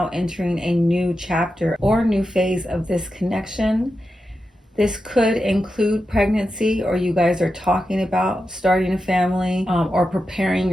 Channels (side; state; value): both; normal; correlation 0.90